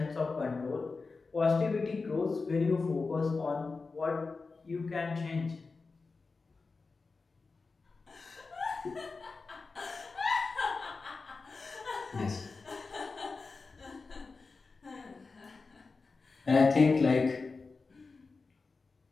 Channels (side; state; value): right; quieter; 4.2 dB